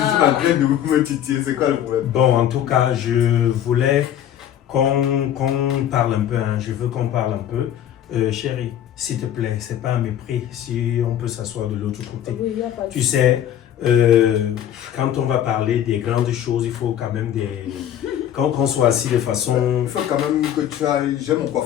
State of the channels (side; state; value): right; quieter; 10.7 dB